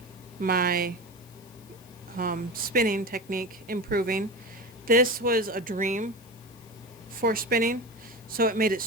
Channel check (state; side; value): noise; left; hiss, 25 dB below the sound